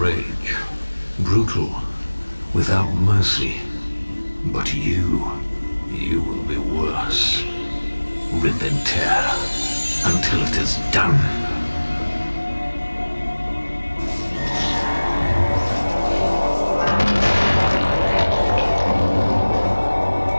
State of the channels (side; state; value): both; inverted; correlation -1.00